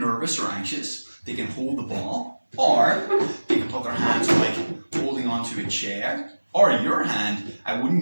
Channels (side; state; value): both; inverted; correlation -1.00